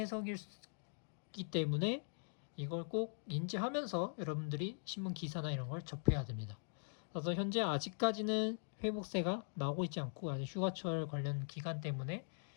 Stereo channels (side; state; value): right; silent; digital silence